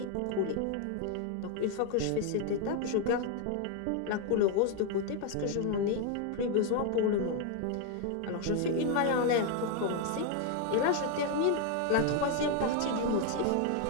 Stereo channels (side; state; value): both; different; correlation 0.01